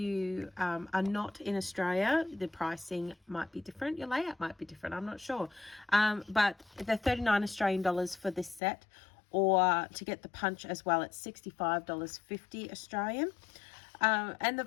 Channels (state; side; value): drops out; right; at 8.6 s